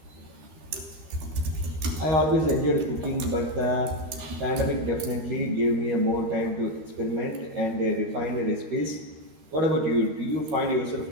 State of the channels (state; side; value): late; left; 13 ms